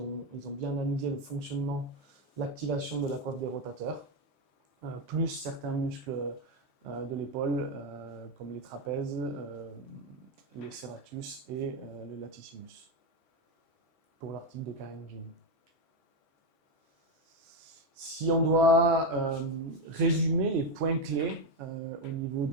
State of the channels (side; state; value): both; normal; correlation 0.09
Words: ont bien analysé le fonctionnement, l'activation de la coiffe des rotateurs, plus certains muscles de l'épaule, comme les trapèzes, les serratus et le latissimus, pour l'article de Karen Jean. Si on doit résumer les points clés au niveau